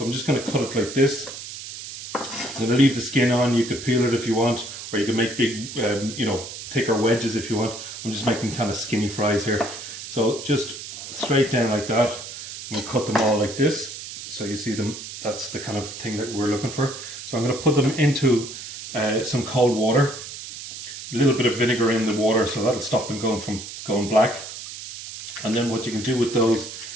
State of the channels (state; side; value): noise; right; hiss, 11 dB below the sound